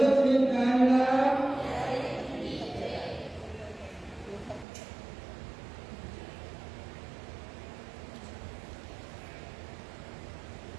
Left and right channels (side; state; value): left; drops out; at 4.7 s